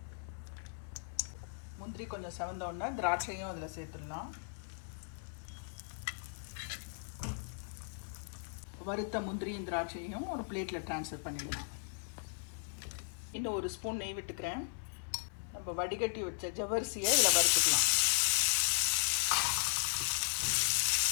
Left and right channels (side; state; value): right; silent; 53 dB below the other